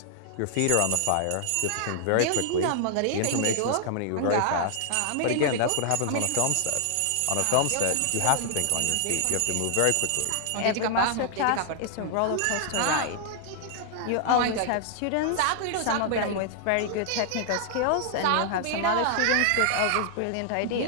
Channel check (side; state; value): both; different; correlation 0.00